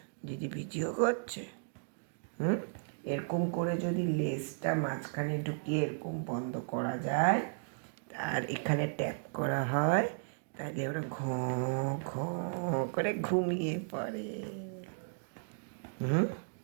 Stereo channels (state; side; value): silent; left; digital silence